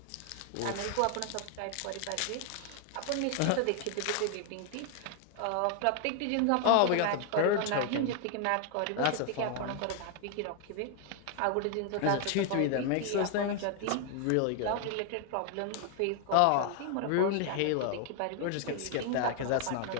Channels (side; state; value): both; different; correlation 0.00